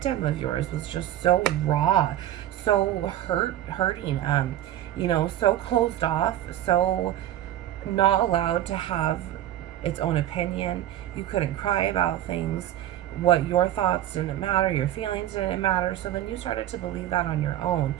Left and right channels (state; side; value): quieter; left; 12.5 dB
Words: of yours was just so raw, so hurting, you know, so closed off, so not allowed to have its own opinion. You couldn't cry about things. What your thoughts didn't matter, your feelings didn't matter. So then you started to believe that on your own,